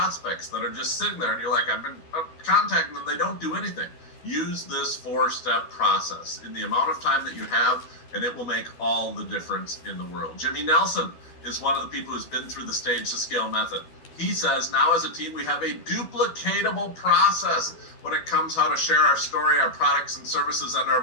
that are just sitting there and you're like, I've been contacting them, they don't do anything, use this 4-step process in the amount of time that you have, and it will make all the difference in the world. Jimmy Nelson is one of the people who's been through the Stage to Scale method. He says, now as a team, we have a duplicatable process when it comes how to share our story, our products and services, and our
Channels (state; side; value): late; right; 12 ms